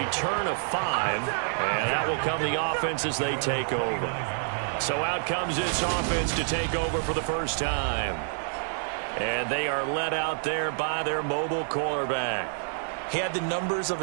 of 5, and that will come the offense as they take over. So out comes this offense to take over for the first time. And they are led out there by their mobile quarterback. He had the numbers of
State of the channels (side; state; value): left; silent; digital silence